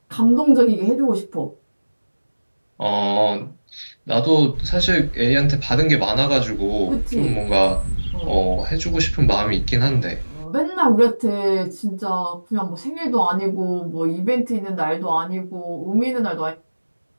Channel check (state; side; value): inverted; both; correlation -1.00